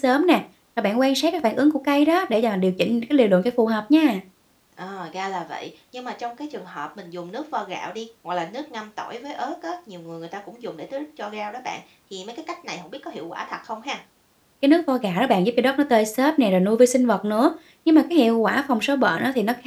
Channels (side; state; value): both; identical; correlation 1.00